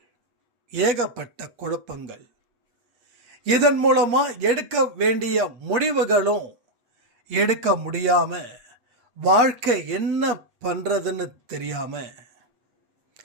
ஏகப்பட்ட குழப்பங்கள். இதன் மூலமா எடுக்க வேண்டிய முடிவுகளும் எடுக்க முடியாம, வாழ்க்கை என்ன பண்றதுன்னு தெரியாம,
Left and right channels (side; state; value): left; late; 8.4 ms